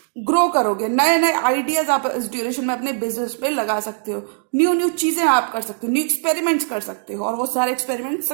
ग्रो करोगे, नए नए आइडियाज आप इस ड्यूरेशन में अपने बिजनेस पे लगा सकते हो, न्यू न्यू चीजें आप कर सकते हो, न्यू एक्सपेरिमेंट्स कर सकते हो और वो सारे एक्सपेरिमेंट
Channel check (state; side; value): silent; left; digital silence